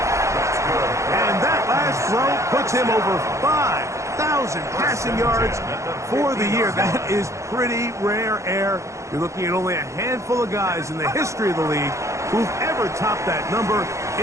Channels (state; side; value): late; left; 0.15 ms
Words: And that last throw puts him over 5,000 passing yards for the year. That is pretty rare air. You're looking at only a handful of guys in the history of the league who've ever topped that number